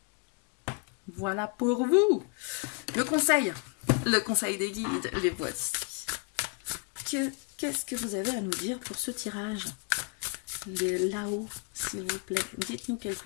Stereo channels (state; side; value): quieter; right; 34.6 dB